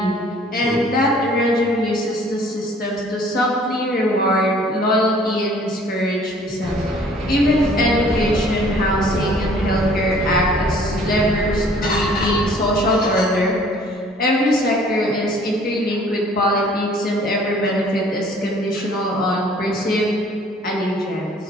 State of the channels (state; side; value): normal; both; correlation 0.55